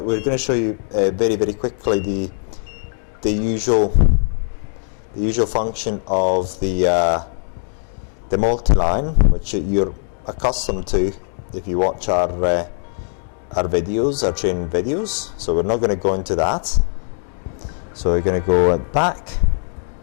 to show you very, very quickly the usual function of the Multiline, which you're accustomed to if you watch our videos, our training videos. So we're not going to go into that. So we're going to go back.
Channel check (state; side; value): silent; right; digital silence